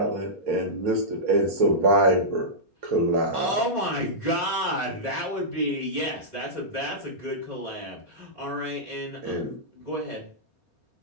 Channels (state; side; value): late; left; 4.3 ms